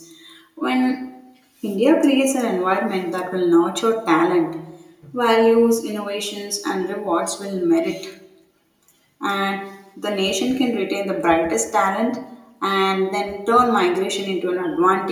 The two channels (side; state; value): both; identical; correlation 1.00